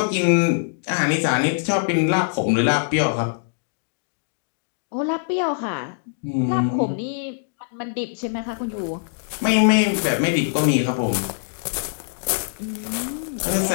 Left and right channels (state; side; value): silent; right; digital silence